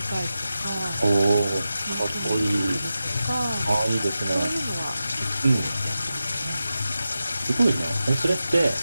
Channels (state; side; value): inverted; both; correlation -0.92